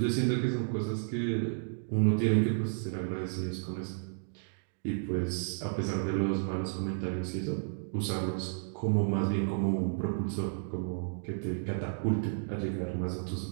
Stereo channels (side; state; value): left; silent; digital silence